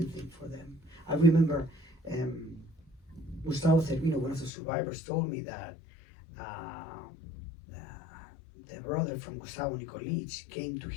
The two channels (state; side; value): drops out; right; at 4.5 s